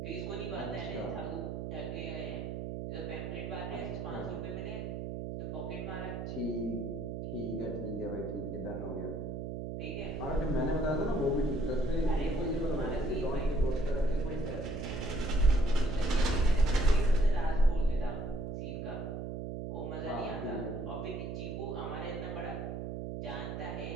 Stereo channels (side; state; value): right; noise; hum, 5 dB below the sound